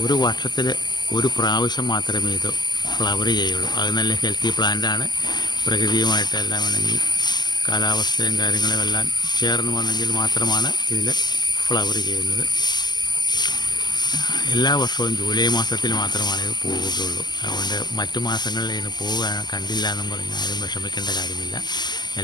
ഒരു വർഷത്തിൽ ഒരു പ്രാവശ്യം മാത്രമേ ഇത് ഫ്ലവർ ചെയ്യുള്ളൂ. അത് നല്ല ഹെൽത്തി പ്ലാന്റാണ്. പ്രകൃതിയുമായിട്ട് എല്ലാം വേണമെങ്കിൽ കാലാവസ്ഥയും കാര്യങ്ങളും എല്ലാം ചേർന്ന് വന്നെങ്കിൽ മാത്രമാണ് ഇതിൽ ഫ്ലവർ ചെയ്യുന്നത്. എല്ലാ വർഷവും ജൂലൈ മാസത്തിൽ മാത്രമാണ് ഇത് പോവുകയുള്ളൂ. അതുകൊണ്ട് മറ്റു മാസങ്ങളിൽ ഇതിന് പോവുക കണ്ടില്ല എന്നും പറഞ്ഞ് ആരും വിഷമിക്കേണ്ട കാര്യമില്ല.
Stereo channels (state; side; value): late; right; 0.21 ms